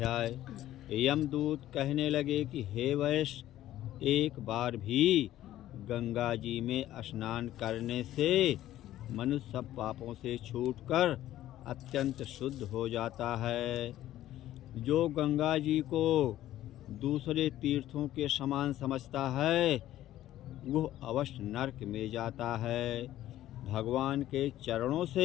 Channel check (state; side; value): quieter; right; 13.6 dB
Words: यमदूत कहने लगे कि हे वैश्य, एक बार भी गंगा जी में स्नान करने से मनुष्य सब पापों से छूटकर अत्यंत शुद्ध हो जाता है। जो गंगा जी को दूसरे तीर्थों के समान समझता है वह अवश्य नरक में जाता है। भगवान के चरणों